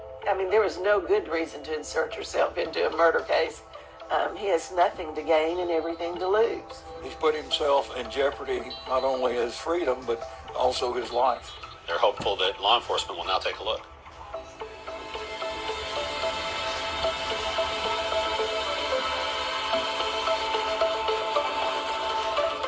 I mean, there is no good reason to insert yourself into a murder case. He has nothing to gain and everything to lose. He's put himself in jeopardy, not only his freedom, but also his life. They're hopeful that law enforcement will now take a look.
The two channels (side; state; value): both; identical; correlation 1.00